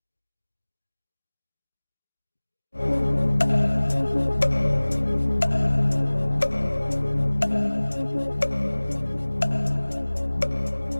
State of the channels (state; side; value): inverted; both; correlation -1.00